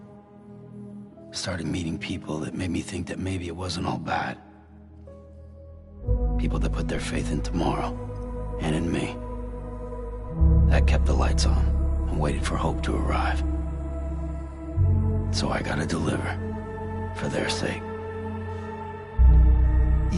Started meeting people that made me think that maybe it wasn't all bad. People that put their faith in tomorrow, and in me. That kept the lights on, and waited for hope to arrive. So I gotta deliver, for their sake.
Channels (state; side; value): identical; both; correlation 1.00